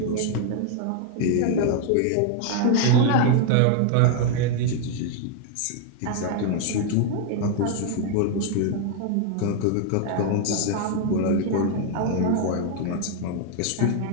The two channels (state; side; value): different; both; correlation 0.00